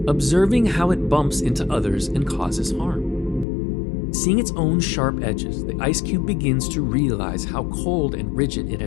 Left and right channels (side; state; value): right; drops out; at 3.5 s